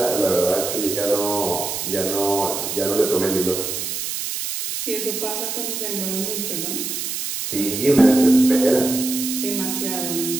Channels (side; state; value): right; noise; hiss, 4 dB below the sound